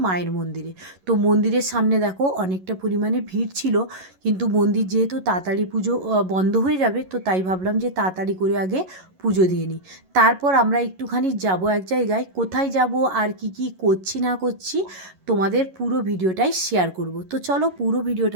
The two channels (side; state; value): left; late; 11 ms